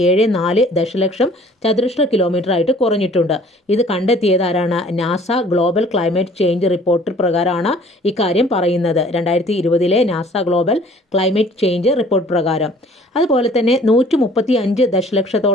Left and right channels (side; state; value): both; normal; correlation 0.53